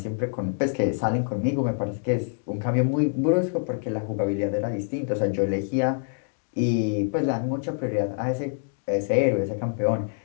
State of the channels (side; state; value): right; silent; digital silence